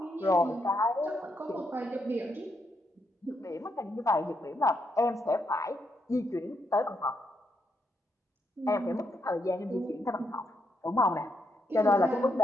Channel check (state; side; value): normal; both; correlation 0.79